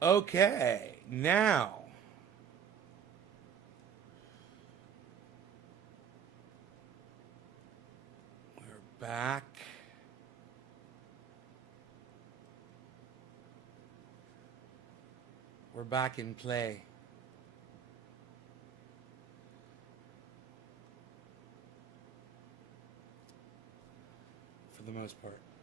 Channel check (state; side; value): quieter; left; 7.8 dB